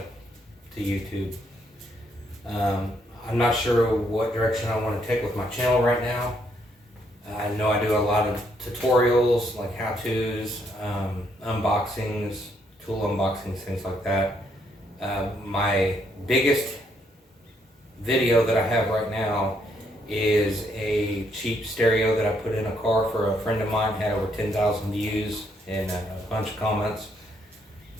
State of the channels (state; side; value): normal; both; correlation 0.73